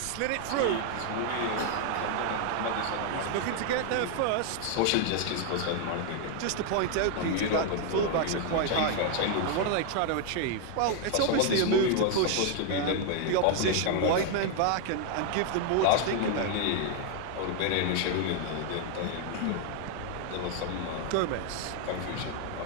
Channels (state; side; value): different; both; correlation 0.00